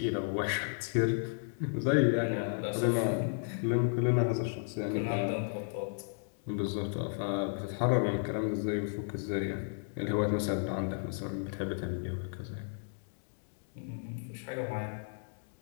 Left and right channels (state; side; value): silent; right; digital silence